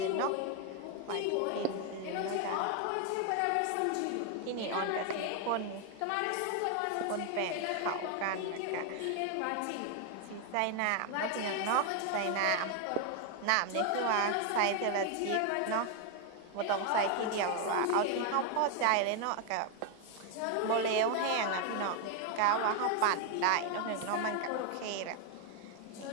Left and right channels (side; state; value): both; different; correlation 0.01